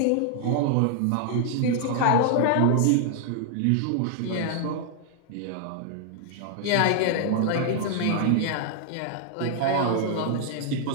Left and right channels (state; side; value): different; both; correlation 0.00